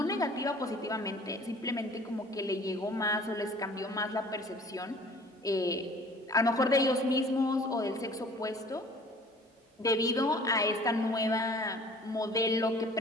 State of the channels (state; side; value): normal; both; correlation 0.50